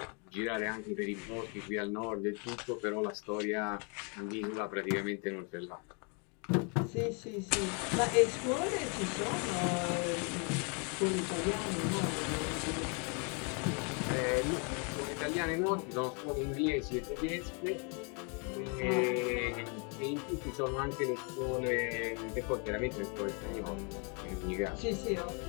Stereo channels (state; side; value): quieter; right; 36.0 dB